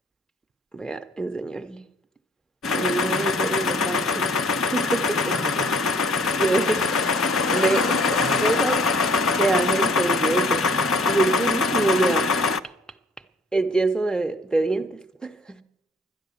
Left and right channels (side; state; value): both; normal; correlation 0.58